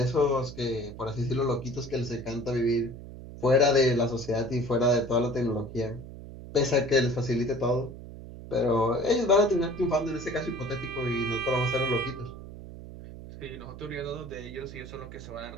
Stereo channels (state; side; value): noise; right; hum, 13 dB below the sound